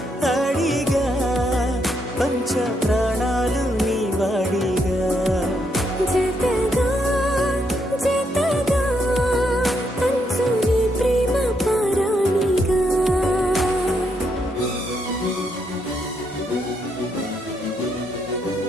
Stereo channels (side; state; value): both; normal; correlation 0.77